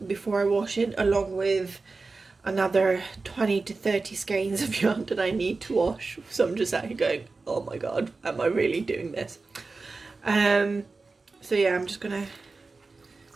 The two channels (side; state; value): left; quieter; 3.9 dB